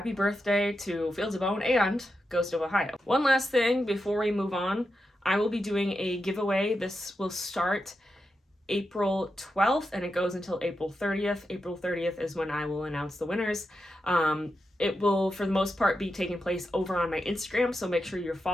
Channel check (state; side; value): normal; both; correlation 0.88